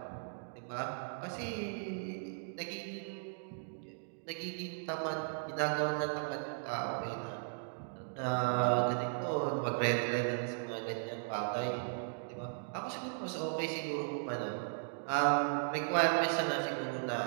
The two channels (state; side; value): silent; left; digital silence